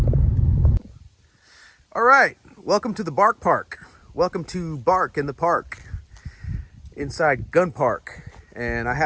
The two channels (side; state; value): both; identical; correlation 1.00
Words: All right, welcome to the Bark Park. Welcome to Bark in the Park, inside Gunn Park. And I